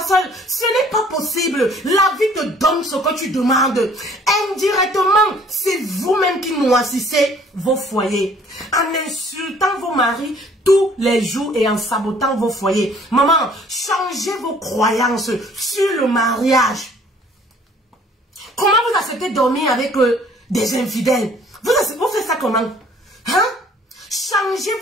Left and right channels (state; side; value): normal; both; correlation 0.57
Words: seul. Ce n'est pas possible. La vie te donne ce que tu demandes. Indirectement, c'est vous-même qui noircissez vos foyers. En insultant vos maris tous les jours et en sabotant vos foyers. Maman, changez vos croyances sur le mariage. Comment vous acceptez de dormir avec des infidèles? Vous faites ça comment? Hein? Changez